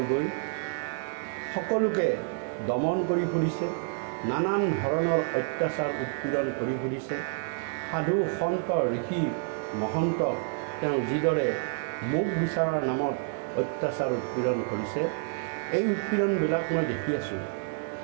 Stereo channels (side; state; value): left; silent; 59 dB below the other